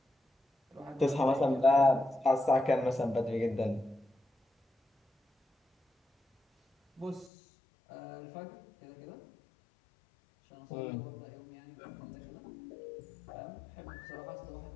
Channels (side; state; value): right; drops out; at 7.3 s